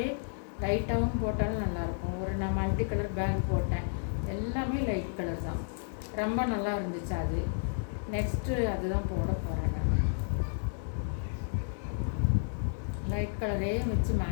லைட்டாகவும் போட்டாலும் நல்லாயிருக்கும். நான் மல்டி கலர் பேக் போட்டேன், எல்லாமே லைட் கலர் தான், ரொம்ப நல்லா இருந்துச்சு. அது நெக்ஸ்ட்டு அதுதான் போட போகிறேன். நான் லைட் கலரே வச்சு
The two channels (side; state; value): right; silent; digital silence